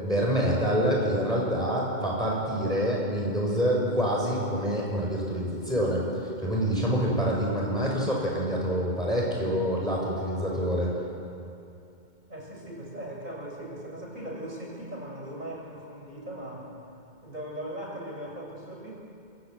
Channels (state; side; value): late; left; 2.2 ms